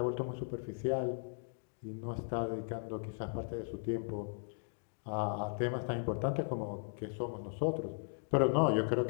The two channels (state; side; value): silent; right; digital silence